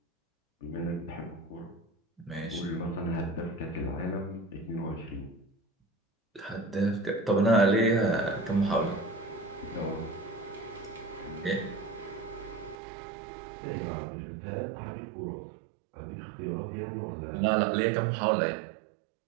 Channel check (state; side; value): drops out; left; at 12.8 s